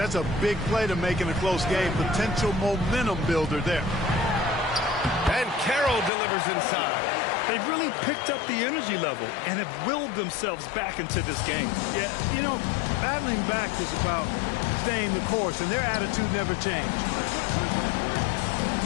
a big play to make in a close game. Potential momentum builder there. And Carroll delivers inside. They've really picked up the energy level and have willed themselves back into this game. Yeah, you know, battling back is about staying the course, and their attitude never changed.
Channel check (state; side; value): drops out; right; at 6.1 s